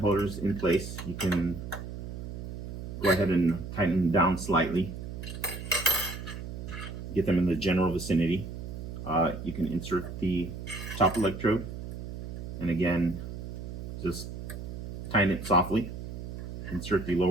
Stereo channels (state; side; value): noise; right; hum, 8 dB below the sound